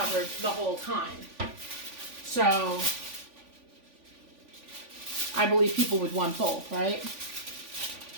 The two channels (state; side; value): late; left; 3.5 ms